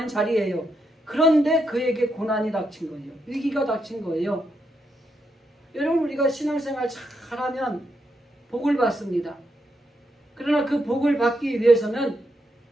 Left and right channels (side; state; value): both; normal; correlation 0.81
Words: 자리예요. 그런데 그에게 고난이 닥친 거예요. 위기가 닥친 거예요. 여러분, 우리가 신앙생활 잘하면 복을 받습니다. 그러나 그 복을 받기 위해서는